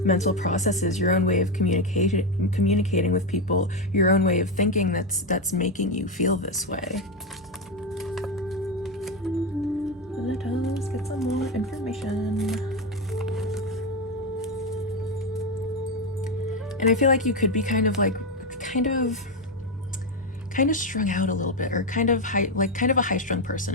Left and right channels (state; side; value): normal; both; correlation 0.10